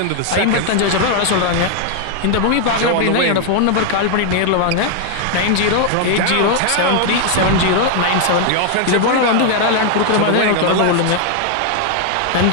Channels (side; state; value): both; different; correlation 0.00